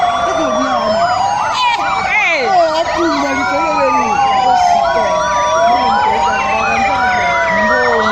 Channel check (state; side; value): noise; right; rumble, 27 dB below the sound